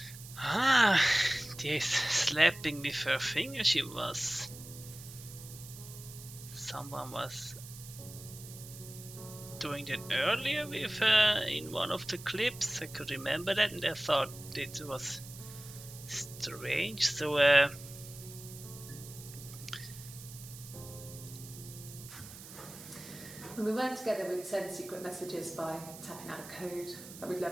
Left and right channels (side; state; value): right; noise; hiss, 15 dB below the sound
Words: Ah, this slapping with her finger she was. Someone was doing that earlier with in one of the clips. I could remember that and I thought it was strange. So When we weren't together, we'd send secret messages by tapping out a code that we'd